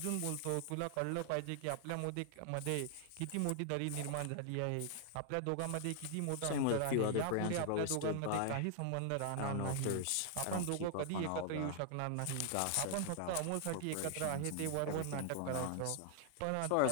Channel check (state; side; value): different; both; correlation 0.00